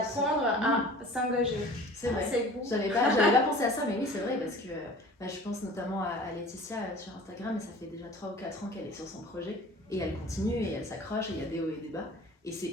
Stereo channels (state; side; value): normal; both; correlation 0.44